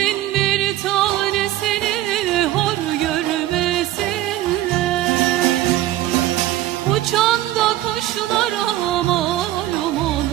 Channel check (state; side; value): quieter; left; 14.7 dB